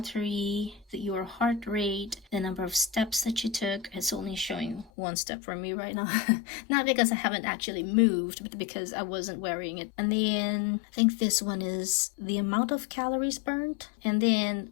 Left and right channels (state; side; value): drops out; right; at 4.9 s